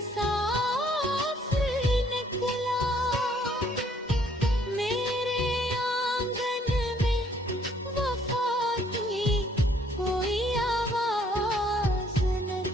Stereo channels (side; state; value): both; normal; correlation 0.64